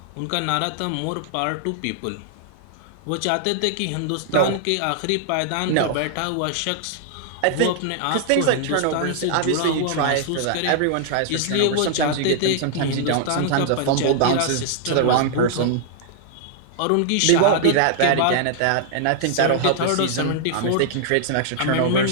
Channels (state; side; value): different; both; correlation -0.01